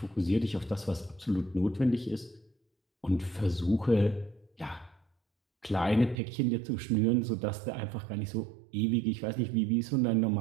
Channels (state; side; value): drops out; left; at 6.2 s